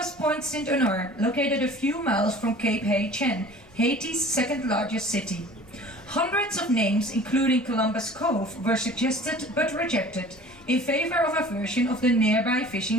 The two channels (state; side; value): normal; both; correlation 0.45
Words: Point Saint-Honor, located a few miles from Cape Hay-Chen, Haiti's second largest city. Hundreds of names, including Columbus Cove, were suggested but rejected in favor of a version of the nearby